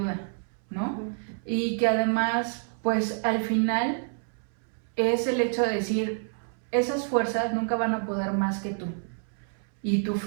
¿no? Y que además, pues al final es el hecho de decir, esas fuerzas nunca van a poder más que tú. Y tu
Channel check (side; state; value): left; silent; 59 dB below the other